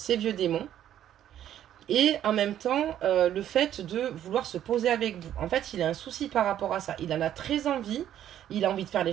vieux démons. Et en même temps, le fait de vouloir se poser avec vous. En fait, il a un souci par rapport à ça. Il en a très envie. Il a envie de faire les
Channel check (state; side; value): quieter; left; 11.1 dB